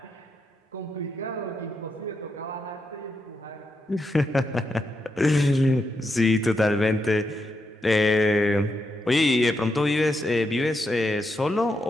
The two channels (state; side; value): normal; both; correlation 0.83